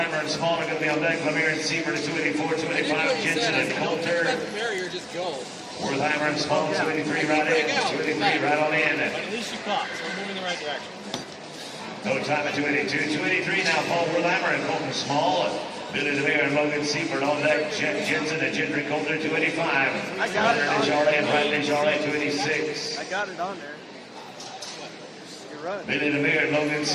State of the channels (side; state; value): both; identical; correlation 1.00